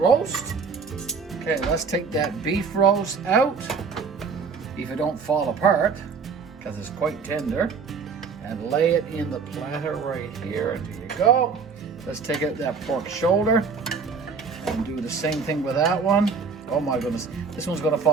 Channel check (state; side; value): quieter; left; 5.3 dB